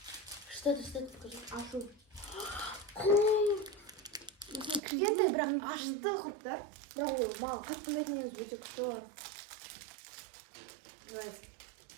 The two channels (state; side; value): drops out; left; at 4.8 s